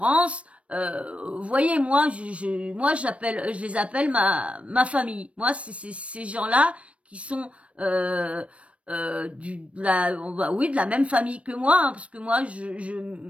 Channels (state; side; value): late; left; 0.062 ms